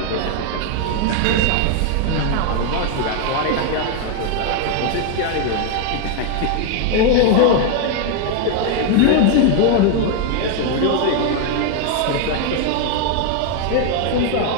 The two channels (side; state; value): both; different; correlation 0.00